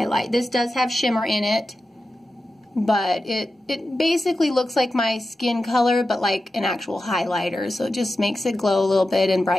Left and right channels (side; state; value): both; normal; correlation 0.92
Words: This does have shimmer in it, but it basically looks like my skin color, but like an actual highlighter. So it just makes it glow a little bit and